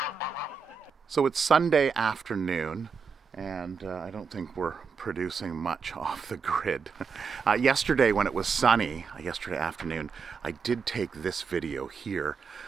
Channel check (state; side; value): quieter; left; 5.6 dB